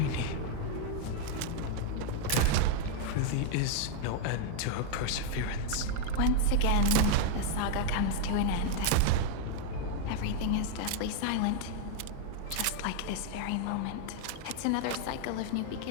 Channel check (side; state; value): both; different; correlation 0.00